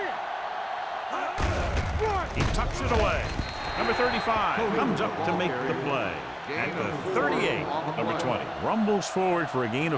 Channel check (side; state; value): both; identical; correlation 1.00